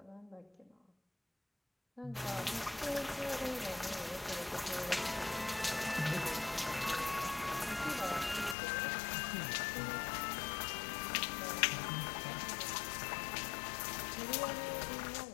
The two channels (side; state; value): right; drops out; at 8.6 s